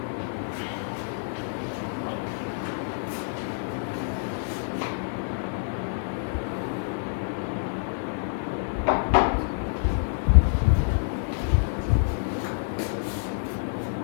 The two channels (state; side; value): silent; right; 60 dB below the other